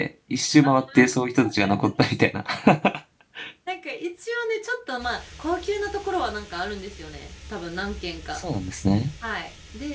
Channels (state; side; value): identical; both; correlation 1.00